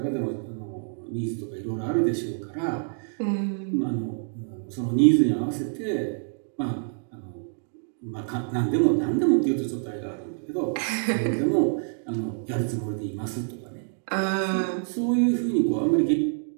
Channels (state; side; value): silent; left; digital silence